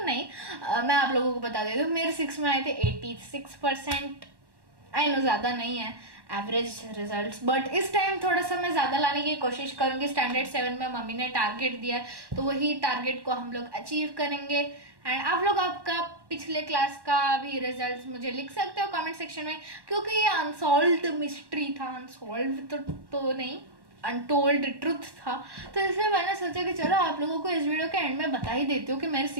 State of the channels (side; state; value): left; late; 1.1 ms